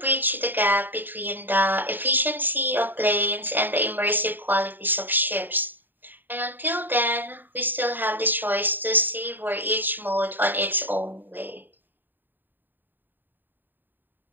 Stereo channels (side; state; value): left; late; 0.091 ms